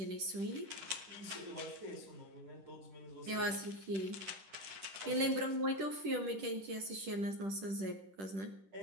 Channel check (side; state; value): left; late; 10 ms